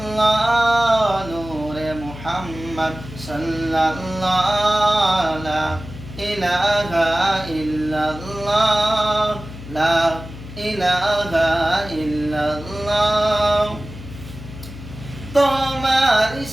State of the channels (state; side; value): noise; left; hum, 13 dB below the sound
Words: নূরে মুহাম্মদ সাল্লাল্লাহ লা ইলাহা ইল্লাল্লাহ লা ইলাহা ইল্লাল্লাহ তোমার